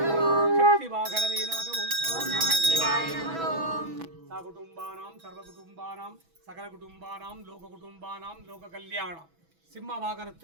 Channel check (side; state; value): left; late; 6.1 ms